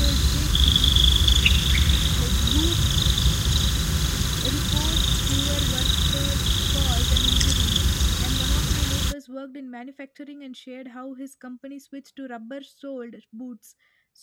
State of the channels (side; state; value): both; identical; correlation 1.00